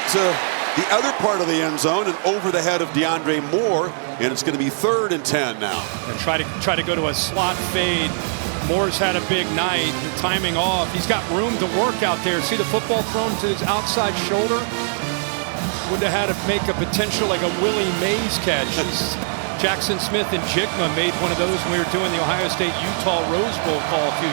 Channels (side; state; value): left; silent; digital silence